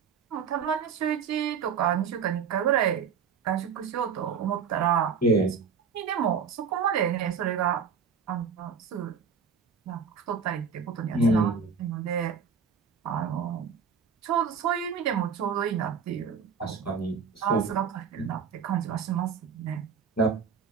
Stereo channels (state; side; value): quieter; left; 6.2 dB